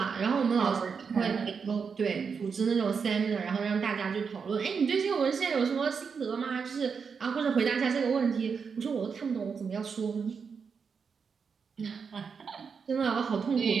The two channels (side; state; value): left; quieter; 5.9 dB